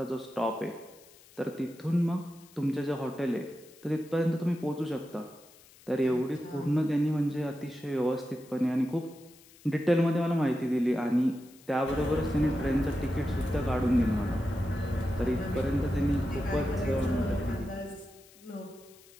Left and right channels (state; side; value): noise; left; hiss, 25 dB below the sound